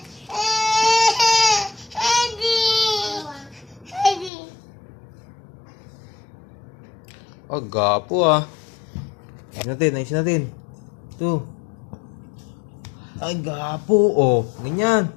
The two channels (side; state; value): right; drops out; at 4.3 s